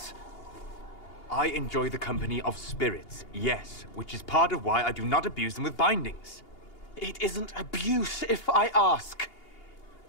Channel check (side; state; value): right; late; 2.8 ms